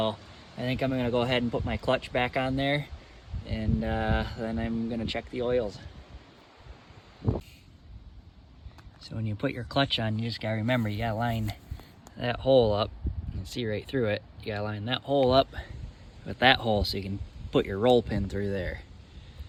I think I'm gonna go ahead and put my clutch back on there, and then I'm gonna check the oils. So when you put your clutch on, you just gotta remember, you gotta line that hole up. You can see right through it. You gotta line that hole up with that hole so you can put your roll pin through there.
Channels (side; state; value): both; identical; correlation 1.00